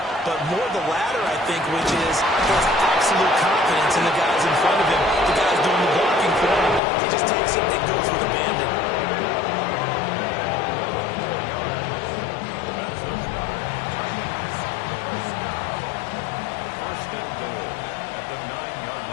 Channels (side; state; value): right; drops out; at 6.8 s